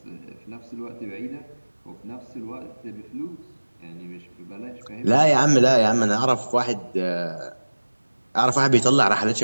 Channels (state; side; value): inverted; both; correlation -1.00